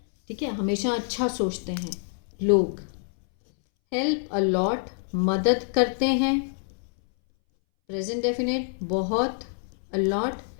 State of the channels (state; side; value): silent; right; 61 dB below the other